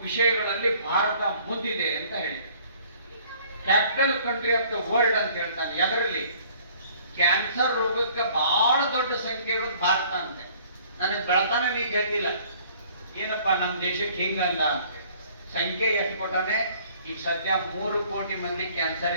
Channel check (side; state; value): both; inverted; correlation -0.56